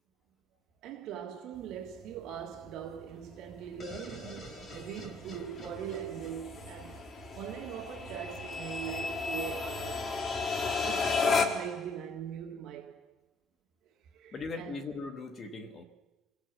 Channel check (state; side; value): normal; both; correlation 0.62